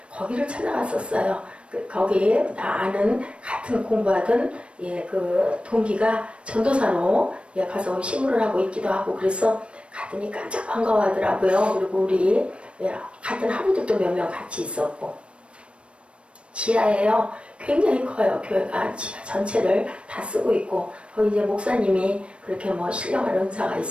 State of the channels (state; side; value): late; left; 0.059 ms